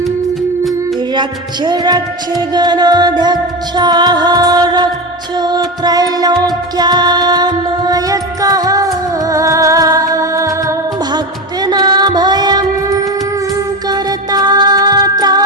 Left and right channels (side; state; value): both; normal; correlation 0.21